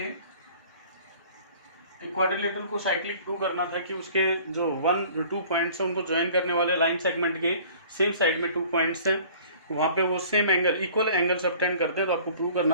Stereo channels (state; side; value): inverted; both; correlation -0.50